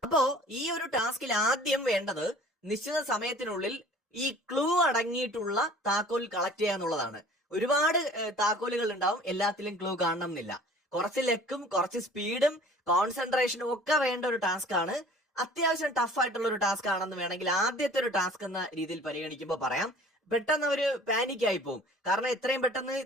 അപ്പോ ഈ ഒരു ടാസ്കിൽ ആദ്യം വേണ്ടത് നിശ്ചിത സമയത്തിനുള്ളിൽ ഈ ക്ലൂ അടങ്ങിയിട്ടുള്ള താക്കോൽ കളക്ട് ചെയ്യുക എന്നുള്ളതാണ്. ഒരുപാട് താക്കോലുകൾ ഉണ്ടാവും, എല്ലാത്തിലും ക്ലൂ കാണണം എന്നില്ല. കുറച്ച് ലെക്കും കുറച്ച് സ്പീഡും കോൺസെൻട്രേഷനും ഒക്കെ വേണ്ട ഒരു ടാസ്ക് ആണ്. അത്യാവശ്യം ടഫ് ആയിട്ടുള്ള ഒരു ടാസ്ക് ആണെന്ന് വേണമെങ്കിൽ ആദ്യത്തെ ഒരു ടാസ്ക് എന്ന രീതിയിൽ പരിഗണിക്കുമ്പോൾ പറയാം. പെട്ടെന്ന് ഒരു പാനിക് ആയി പോകും. കാരണം എത്രയും പെട്ടെന്ന്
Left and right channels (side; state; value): both; normal; correlation 0.48